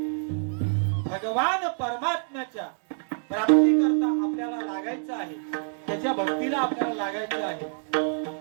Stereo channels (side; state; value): left; silent; digital silence